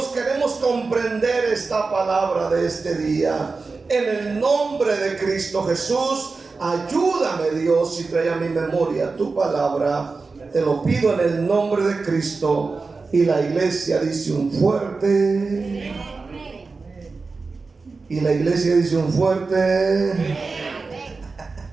queremos comprender esta palabra de este día. En el nombre de Cristo Jesús, ayúdame, Dios, y trae a mi memoria tu palabra. Te lo pido en el nombre de Cristo. Y la iglesia dice un fuerte. Y la iglesia dice un fuerte.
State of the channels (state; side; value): quieter; left; 4.1 dB